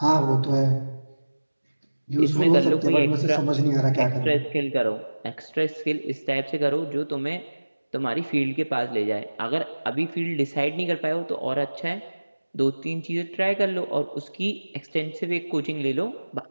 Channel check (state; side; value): inverted; both; correlation -1.00